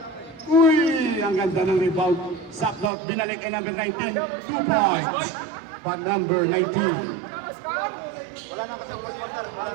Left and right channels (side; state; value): left; drops out; at 2.9 s